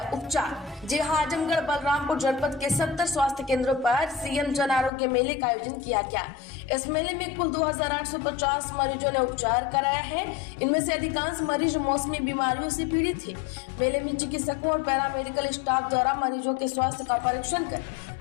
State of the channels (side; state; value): right; drops out; at 4.9 s